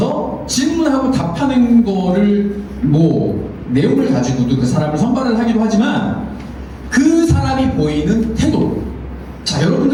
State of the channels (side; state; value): both; identical; correlation 1.00